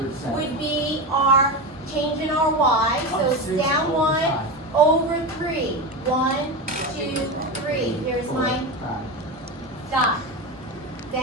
would be our change in our y, so it's down 1 over 3. 1, 2, 3. Here's my dot.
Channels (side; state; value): both; normal; correlation 0.20